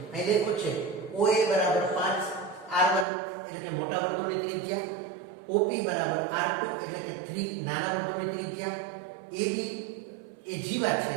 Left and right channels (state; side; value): drops out; left; at 3.1 s